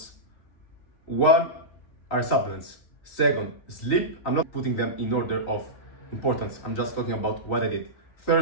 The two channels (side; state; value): right; late; 3.9 ms